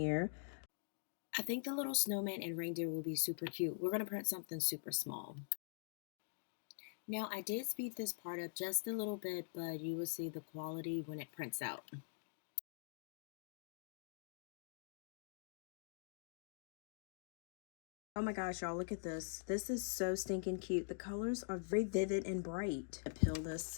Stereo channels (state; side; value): silent; right; digital silence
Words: I think the little snowman and reindeer will be super cute. We're going to print something super small. Now, I did speed this part up just a little bit, but you will see the quality when it prints out. Oh my gosh, y'all, look at this. This is so stinking cute. The colors are very vivid and bright. I peel